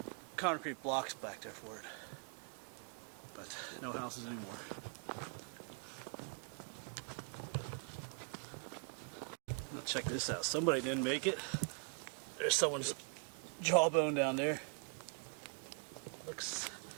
concrete blocks back there for it. But no houses anymore. Now check this out. Somebody didn't make it. There's someone's jawbone down there. Looks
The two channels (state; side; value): quieter; left; 37.6 dB